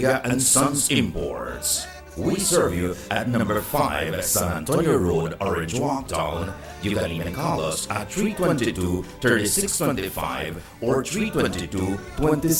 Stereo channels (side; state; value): both; identical; correlation 1.00